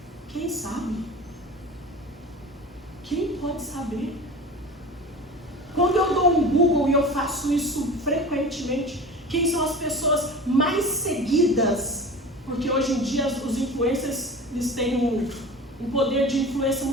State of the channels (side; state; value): both; normal; correlation 0.35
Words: Quem sabe? Quem pode saber? Quando eu dou um Google, e eu faço isso frequentemente, quem são as pessoas mais seguidas? Porque hoje em dia os influencers, eles têm um poder de influência